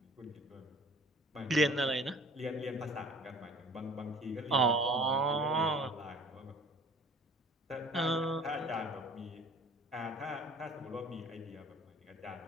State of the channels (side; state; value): both; normal; correlation 0.48